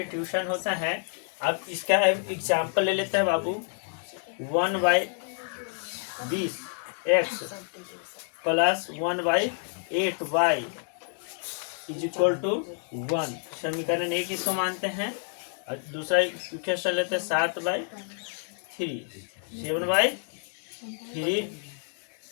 होता है। अब इसका एग्जाम्पल ले लेते हैं बाबू। 1/20 x plus 1/8y is equal to 1। समीकरण एक इसको मानते हैं। और दूसरा इक्वेशन लेते हैं 7/3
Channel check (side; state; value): right; silent; 59 dB below the other